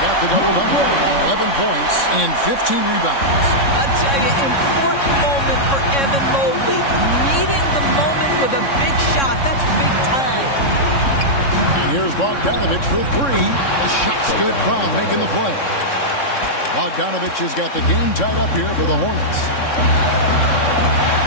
got the double-double. 11 points and 15 rebounds. I tell you, important moment for Evan Mobley. Meeting the moment with a big shot. That's big time. And here's Bogdanovich for 3. The shot's good. Brown making the play. Bogdanovich has got the game tied up here for the Hornets.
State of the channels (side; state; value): right; late; 3.6 ms